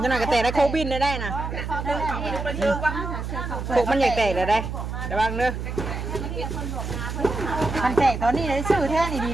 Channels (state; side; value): noise; right; hum, 5 dB below the sound